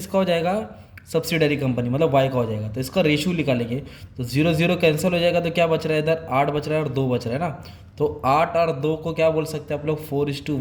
हो जाएगा? सब्सिडरी कंपनी, मतलब वाई का हो जाएगा। तो इसका रेशियो निकालेंगे। तो 0 0 कैंसिल हो जाएगा। तो क्या बच रहा है इधर? 8 बच रहा है और 2 बच रहा है ना। तो 8 और 2 को क्या बोल सकते हैं आप लोग?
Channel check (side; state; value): both; identical; correlation 1.00